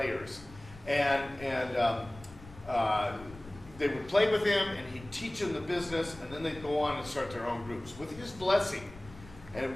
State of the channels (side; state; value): left; noise; rumble, 18 dB below the sound